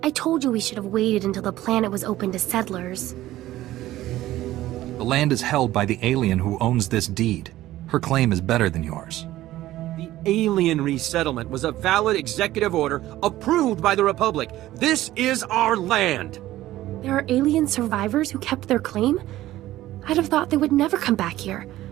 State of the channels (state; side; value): quieter; left; 15.2 dB